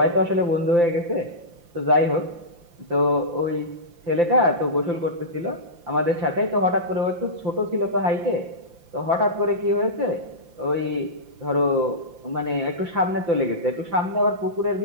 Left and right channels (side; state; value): left; late; 5.8 ms